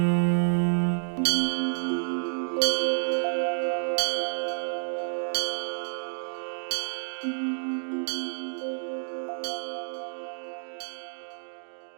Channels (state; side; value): silent; left; digital silence